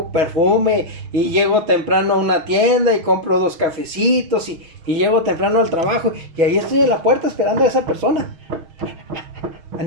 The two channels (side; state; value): left; late; 6.3 ms